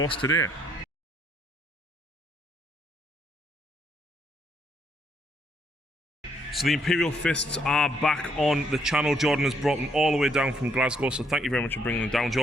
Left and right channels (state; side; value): normal; both; correlation 0.72